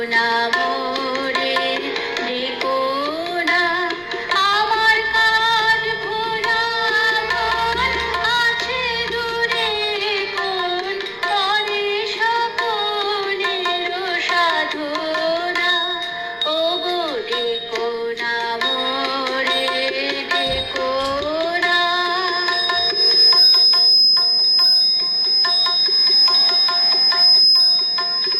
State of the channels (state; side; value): identical; both; correlation 1.00